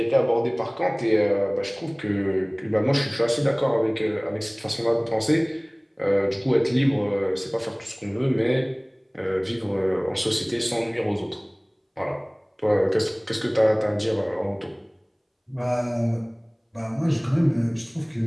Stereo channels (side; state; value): both; identical; correlation 1.00